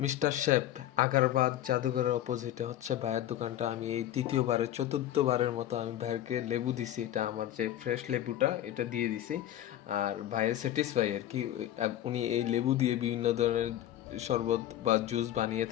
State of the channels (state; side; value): quieter; right; 12.6 dB